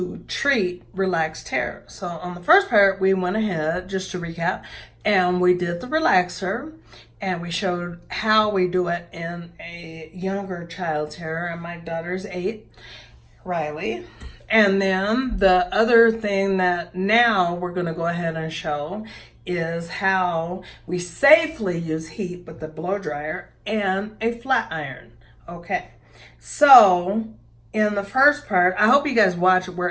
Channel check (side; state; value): both; identical; correlation 1.00